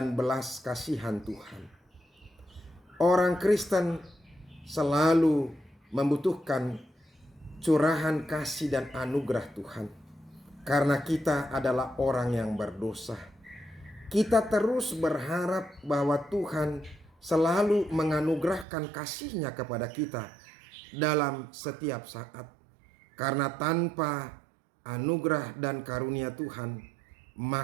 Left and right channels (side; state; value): left; drops out; at 18.7 s